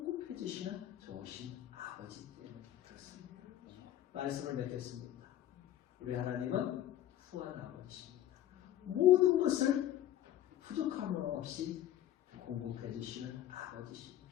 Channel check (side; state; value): right; quieter; 12.3 dB